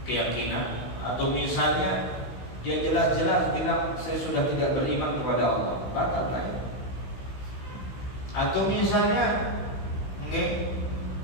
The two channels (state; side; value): late; right; 16 ms